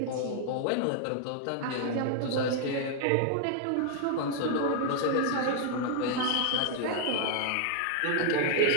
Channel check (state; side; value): different; both; correlation 0.00